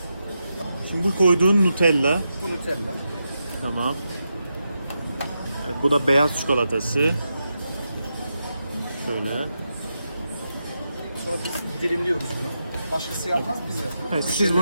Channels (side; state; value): both; inverted; correlation -0.87